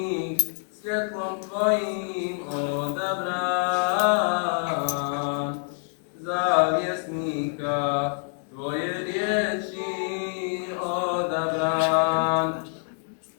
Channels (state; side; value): silent; right; 58 dB below the other